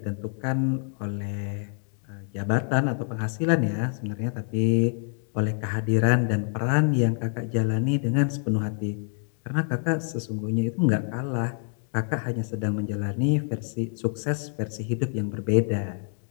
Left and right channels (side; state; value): right; silent; 56 dB below the other